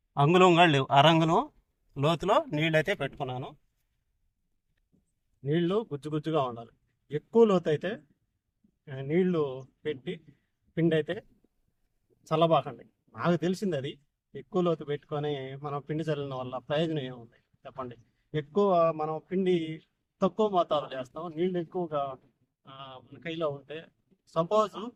అంగుళంగా లేవు, అరంగుళం లోతులో నీళ్ళు అయితే పెట్టుకున్నాను. నీళ్లు గుజ్జుగా ఉండాలి. ఎక్కువ లోతు అయితే నీళ్లు పెట్టి పిండి అయితే చల్లబాకండి. నాకు తెలిసింది అది. ఎక్కువ లోతు పెట్టుకొని మనం పిండి చల్లిన వల్ల ప్రయోజనం ఏముంది చెప్పండి. ఎక్కువ మనం పిండి తక్కువ మోతాదులో చేస్తాం, నీళ్ళు ఎక్కువగా మన కైలో ఉంటే సపోజ్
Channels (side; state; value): both; identical; correlation 1.00